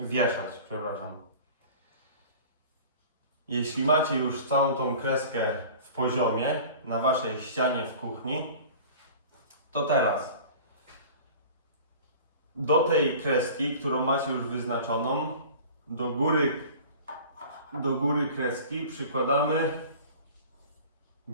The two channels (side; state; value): both; inverted; correlation -0.41